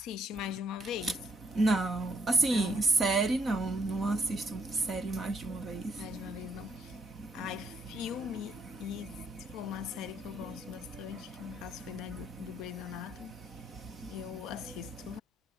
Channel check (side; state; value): both; normal; correlation 0.71